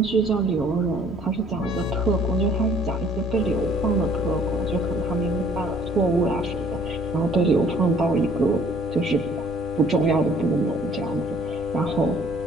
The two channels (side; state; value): both; normal; correlation 0.57